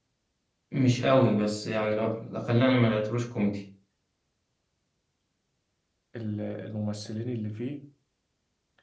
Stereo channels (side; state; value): both; identical; correlation 1.00